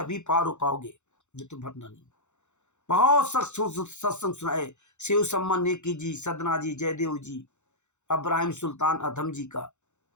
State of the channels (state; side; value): late; right; 0.83 ms